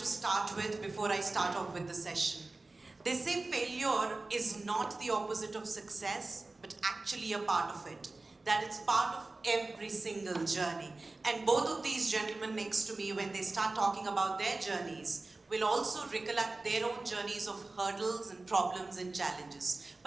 start with before I start off with the session. They say failure is not the opposite of success, but actually a part of it. That it's part of every single journey. And both of these gentlemen next to me, when they start talking about their journeys, will also recollect their own journeys of hurdles and problems and challenges.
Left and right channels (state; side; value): quieter; left; 3.3 dB